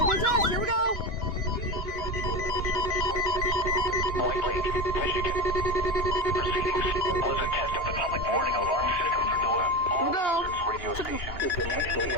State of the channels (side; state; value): right; late; 2.9 ms